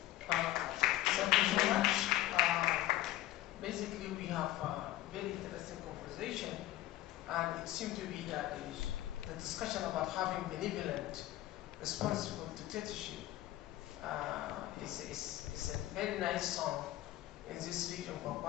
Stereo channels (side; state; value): right; quieter; 15.2 dB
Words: Thank you so much. Basically, we have a very interesting conversation, and it seems to be that the discussion about having benevolent, responsible dictatorship is a very nice song in this region for